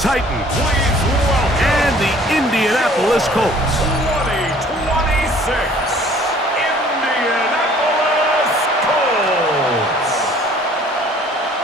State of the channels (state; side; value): normal; both; correlation 0.54